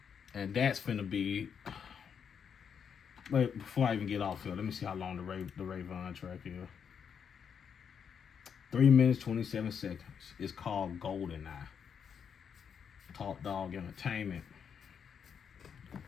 And that's finna be. Wait, before I even get off here, let me see how long the Rayvon track is. 3 minutes, 27 seconds. It's called Golden Eye. Top Dog Entertainment.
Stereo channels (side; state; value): right; quieter; 7.2 dB